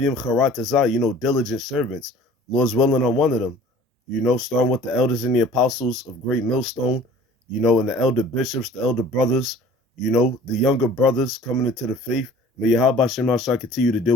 Charatazah, you know, diligent servants. Lord's willing, I'm one of them. You know, starting with the elders and the apostles of Great Millstone, you know, and the elder bishops, the elder brothers, you know, the younger brothers coming into the faith. May Yahweh Shem Yahweh Shai continue to deal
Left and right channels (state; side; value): normal; both; correlation 0.48